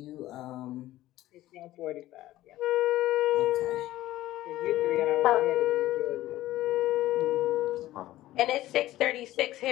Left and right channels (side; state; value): right; quieter; 15.4 dB